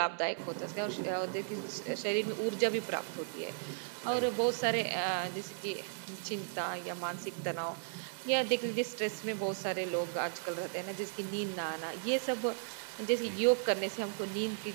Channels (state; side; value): silent; left; 54 dB below the other